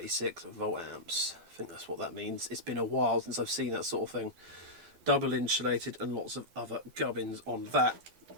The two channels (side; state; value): left; late; 12 ms